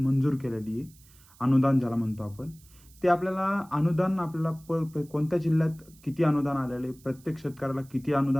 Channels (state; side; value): noise; right; hiss, 26 dB below the sound